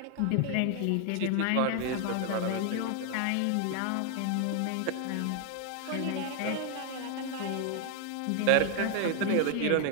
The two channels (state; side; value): different; both; correlation 0.00